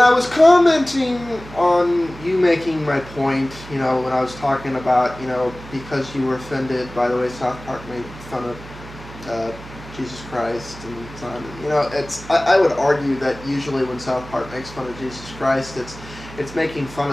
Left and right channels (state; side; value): noise; right; hum, 16 dB below the sound